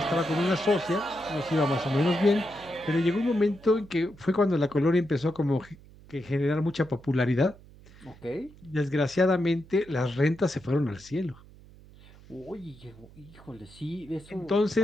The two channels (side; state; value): right; noise; hum, 22 dB below the sound